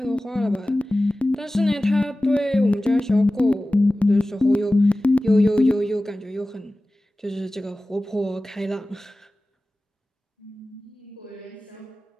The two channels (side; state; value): both; normal; correlation 0.97